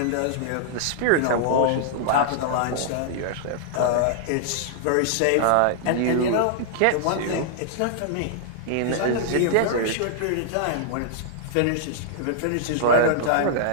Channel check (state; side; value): different; both; correlation -0.01